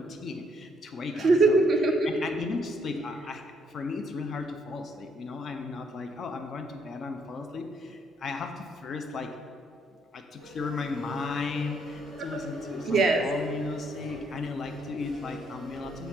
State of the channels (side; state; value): both; normal; correlation 0.70